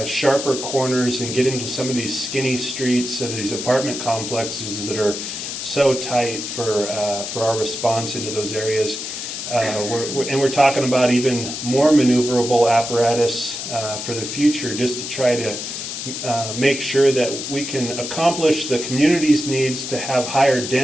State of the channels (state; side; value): noise; left; hiss, 6 dB below the sound